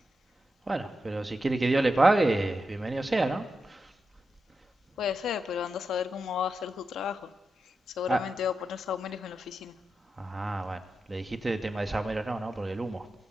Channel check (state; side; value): normal; both; correlation 0.88